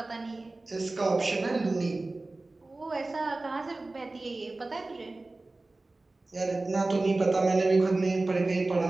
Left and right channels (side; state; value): left; quieter; 3.1 dB